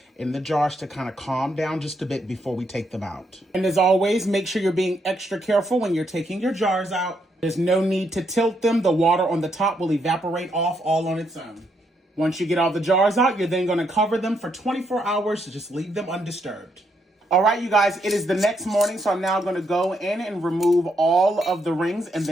in the jars to kind of calm down just a bit before we take them out. And as always, make sure you're being extra careful when you're taking your jars out. There's no need to tilt them. The water on the top will evaporate off all on its own. Once you get all the jars out, you're then going to cover them for 24 hours to just leave them undisturbed. All right, you guys, it is the next morning, so I'm now going to go in and remove all of the rings and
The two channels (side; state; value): both; normal; correlation 0.76